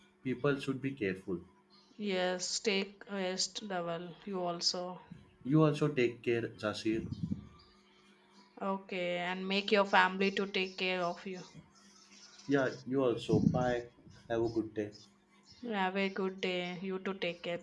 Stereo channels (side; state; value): both; identical; correlation 1.00